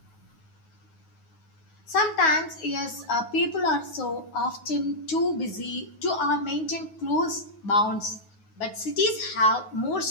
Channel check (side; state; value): right; late; 9.4 ms